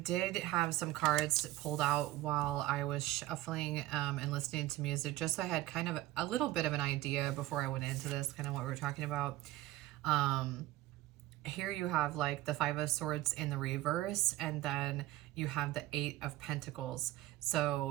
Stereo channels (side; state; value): left; quieter; 16.3 dB